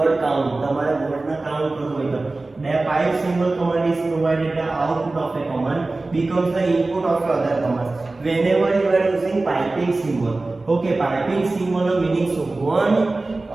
count. તમારે wordના count કરવું હોય તો the pipe symbol command is provided the output of a command becomes the input of other command. Whenever you are using piping symbol, okay, piping symbol no meaning શું, one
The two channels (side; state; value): left; quieter; 3.2 dB